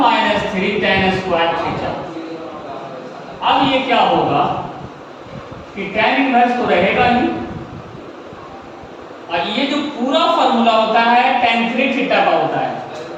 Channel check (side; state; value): both; identical; correlation 1.00